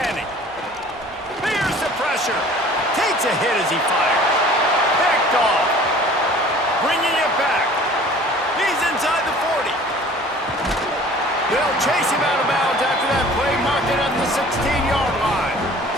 Fears the pressure. Takes a hit as he fires. Picked off. Bringing it back. He's inside the 40. They'll chase him out of bounds after that play, marked it at the 16-yard line.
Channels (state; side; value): normal; both; correlation 0.48